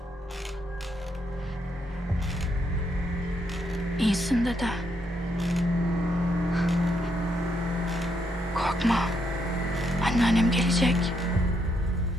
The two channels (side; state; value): both; normal; correlation 0.77